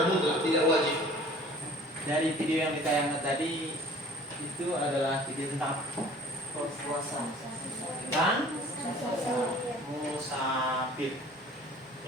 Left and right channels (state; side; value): normal; both; correlation 0.49